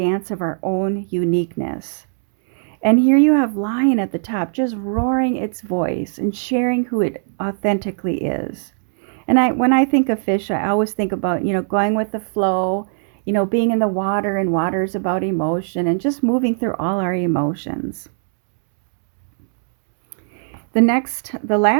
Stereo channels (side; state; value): left; silent; digital silence